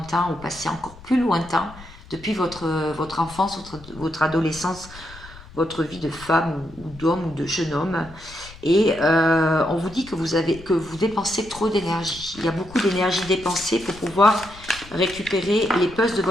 ou passé encore plus lointain, depuis votre enfance, votre adolescence, votre vie de femme ou d'homme ou de jeune homme. Et on vous dit que vous dépensez trop d'énergie. Il y a beaucoup d'énergie dépensée pour pouvoir récupérer les puzzles de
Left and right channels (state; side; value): noise; left; rumble, 19 dB below the sound